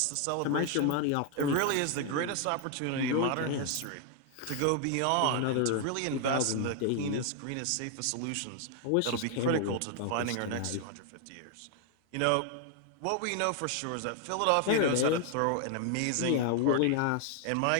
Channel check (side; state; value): both; different; correlation 0.00